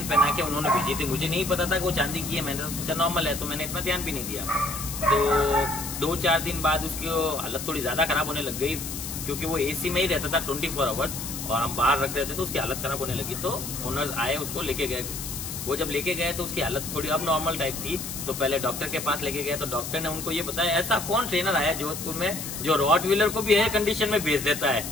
पहना के उन्होंने भेजी थी, मुझे नहीं पता था कि वो चांदी की है, मैंने तो सोचा नॉर्मल है, तो मैंने इतना ध्यान भी नहीं दिया। तो 2-4 दिन बाद उसकी हालत थोड़ी ज्यादा खराब होने लग गई, क्योंकि वो एसी में ही रहता था 24 आवर्स और हम बाहर रख रहे थे, तो उसकी हालत खराब होने लगी। तो ओनर्स आए, उसको लेके गए। वो जब लेके गए तो उसकी हालत थोड़ी अब नॉर्मल टाइप थी, तो पहले डॉक्टर के पास लेके गए। तो डॉक्टर ने उनको ये बताया ऐसा कौन ट्रेनर आया जोधपुर में जो रॉटवीलर को भी एयर कंडीशन में भेज देता है।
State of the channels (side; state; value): left; noise; hiss, 7 dB below the sound